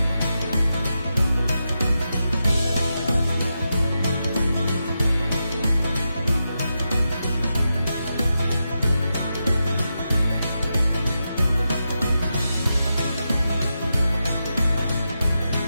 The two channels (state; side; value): inverted; both; correlation -0.88